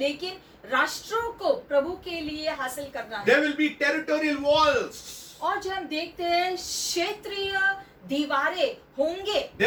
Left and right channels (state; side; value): identical; both; correlation 1.00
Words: राष्ट्रों को प्रभु के लिए हासिल करना है। There will be territorial walls. और जब हम देखते हैं क्षेत्रीय दीवारें होंगे,